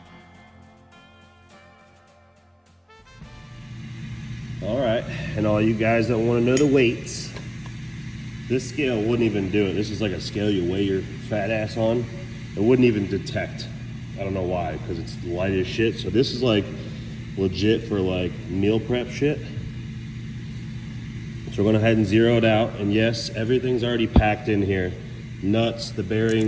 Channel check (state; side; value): identical; both; correlation 1.00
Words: All right, and all you guys that want to know the weights, this scale wouldn't even do it. This is like a scale you weigh your fat ass on. It wouldn't even detect. I don't know why, because it's light as shit. So this is like legit for like meal prep shit. So we're going to go ahead and zero it out. And yes, everything's already packed in here. Nuts, the